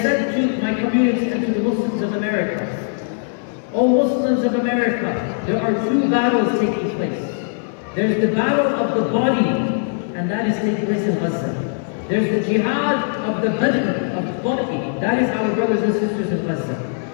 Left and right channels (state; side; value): silent; right; 66 dB below the other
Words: to my community and to the Muslims of America, O Muslims of America, there are two battles taking place. There's the battle of the body, and that is taking place in Gaza. There's the jihad of the badr, of the body, that is our brothers and sisters in Gaza.